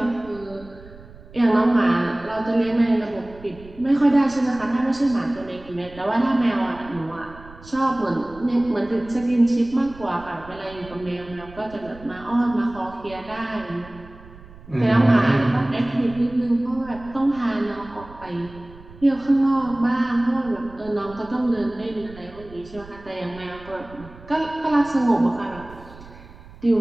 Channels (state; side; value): noise; right; rumble, 20 dB below the sound